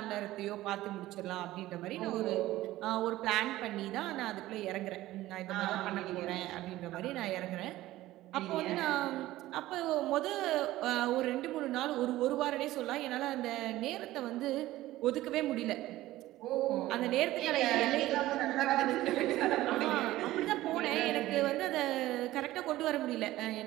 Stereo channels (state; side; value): quieter; left; 16.1 dB